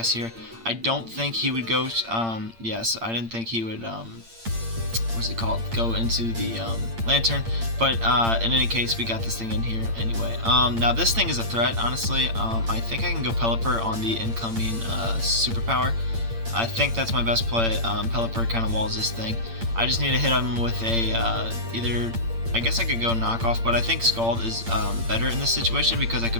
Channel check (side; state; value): left; late; 8.8 ms